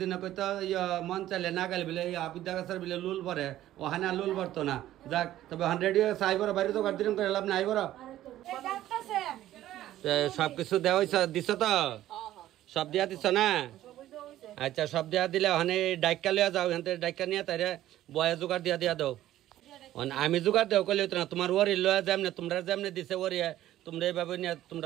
কইতো মন চাইলে না গেলে বলে আবিদ্যা গাছের বলে লুল ভরে ওখানে লুল ভরতো না যাক তবে 100 ইয়ার্স আইবর বাইরে তো গাড়ি করে লাভ না আইবর সবকিছু দেওয়া দিছ তো সব দিয়া দিছ না আচ্ছা সব দিয়া দিলে ওখানে ডাইকা লিয়া যাও এখান থেকে ডাইকা নিয়ে তাই বয়া জোগাড় দিয়া দাও আমি জোগাড় দেও কইলে না তোমার ওরি লয়া যাম না তোমরা যেমনি দিছে ওরি তোমরা এইভাবে নিয়ে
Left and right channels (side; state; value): left; quieter; 13.6 dB